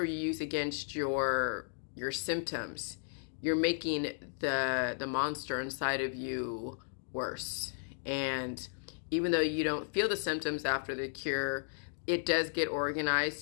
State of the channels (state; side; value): silent; right; digital silence